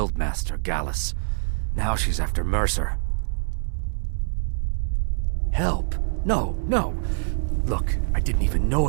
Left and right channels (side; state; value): left; silent; 62 dB below the other